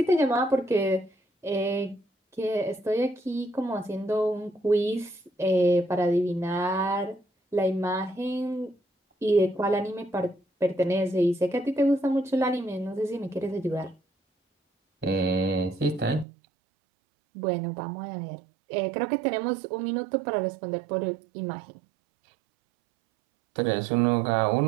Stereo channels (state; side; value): drops out; left; at 16.2 s